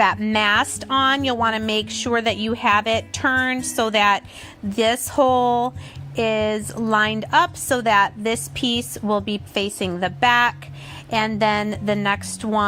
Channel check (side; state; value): both; identical; correlation 1.00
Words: mast on, you'll want to make sure that you have it turned so that this hole is lined up so that this piece will be facing the back and then the next